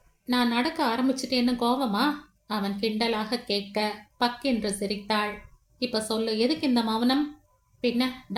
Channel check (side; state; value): both; identical; correlation 1.00